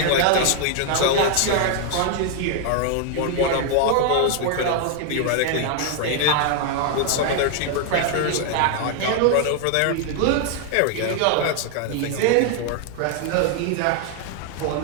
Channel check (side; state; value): both; different; correlation 0.00